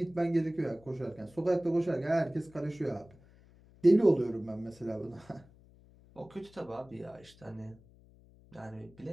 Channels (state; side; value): noise; left; hum, 25 dB below the sound